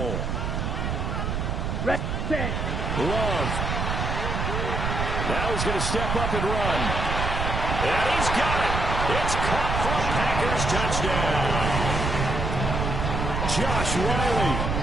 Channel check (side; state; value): right; noise; rumble, 1 dB below the sound